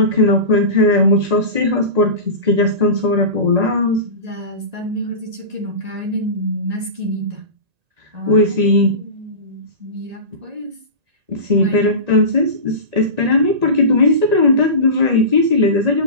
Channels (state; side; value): late; left; 1.9 ms